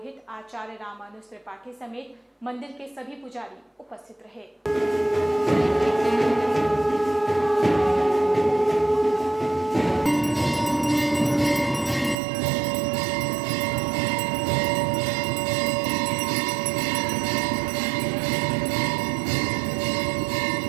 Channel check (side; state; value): left; drops out; at 12.2 s